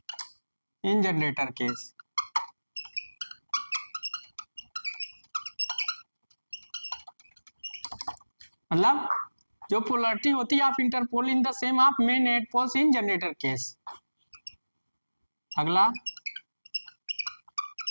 in generator case। मतलब जो polarity होती है of interpole in the same of main head poles in generator case. अगला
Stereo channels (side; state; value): both; inverted; correlation -1.00